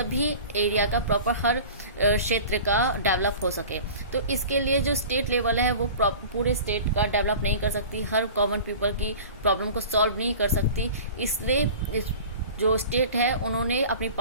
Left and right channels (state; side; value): inverted; both; correlation -0.39